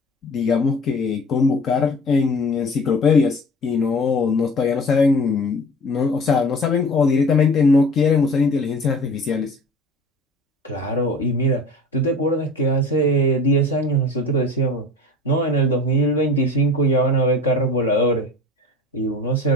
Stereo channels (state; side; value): normal; both; correlation 0.40